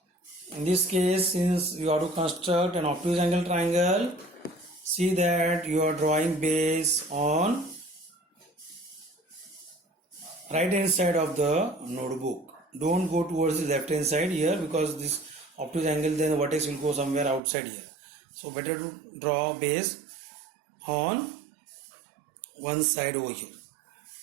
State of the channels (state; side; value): drops out; left; at 17.4 s